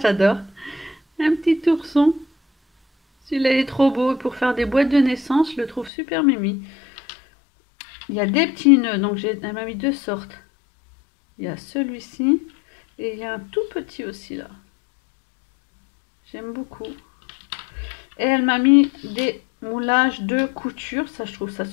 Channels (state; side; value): drops out; right; at 5.9 s